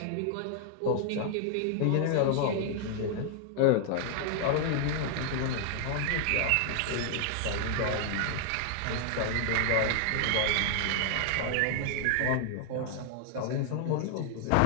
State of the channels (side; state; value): both; different; correlation 0.00